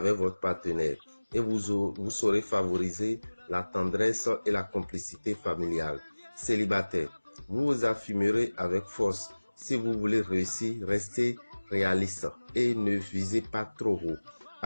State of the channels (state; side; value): inverted; both; correlation -1.00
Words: votre partenaire et vous saurez favoriser la tendresse et la complicité familiale. Célibataire, vous vous affirmerez avec force. Si vous voulez réussir, restez réaliste. et ne visez pas trop haut.